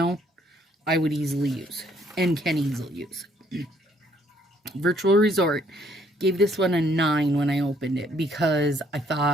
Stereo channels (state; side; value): normal; both; correlation 0.66